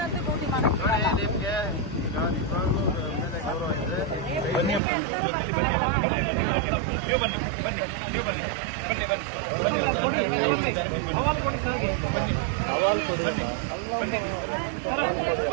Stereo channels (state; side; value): drops out; left; at 4.8 s